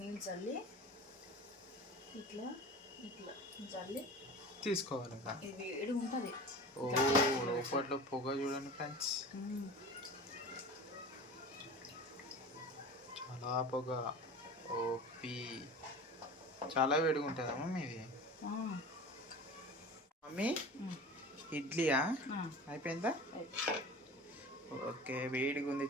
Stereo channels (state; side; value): normal; both; correlation 0.35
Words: నీళ్ళు చల్లి ఇట్లా ఇట్లా చల్లి తీసుకోవాలి. ఇది వేడి ఉంటుంది. లోపట్లో పొగ చూడండి ఫ్రెండ్స్, చాలా పొగ. ఓపి చాలా వేడిగా ఉంటుందమ్మా మీది. మమ్మీ, ఇడ్లీయా అయిపోయిందా? ఓకే, వేడిగా ఉంది